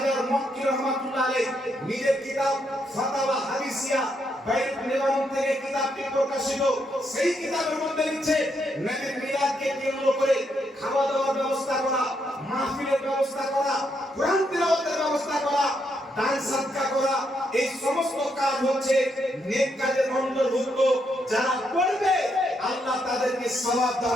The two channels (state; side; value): normal; both; correlation 0.78